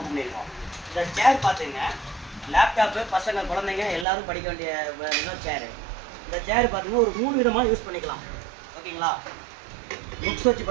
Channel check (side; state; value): left; drops out; at 4.0 s